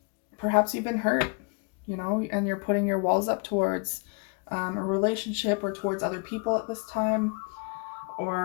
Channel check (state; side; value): quieter; right; 34.1 dB